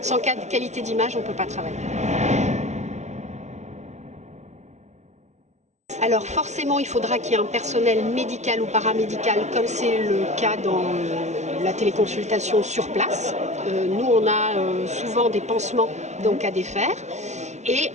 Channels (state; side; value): late; left; 0.33 ms